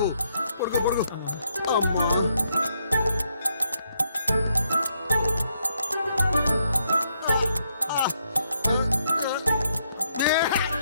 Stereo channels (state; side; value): inverted; both; correlation -0.76